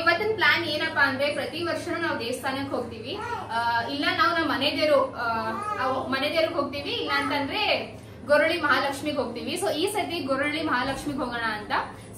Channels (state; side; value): identical; both; correlation 1.00